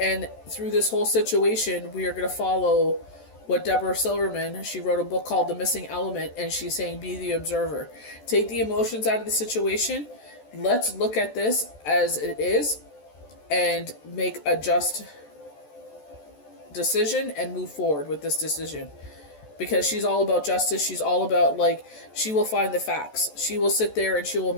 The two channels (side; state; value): right; late; 14 ms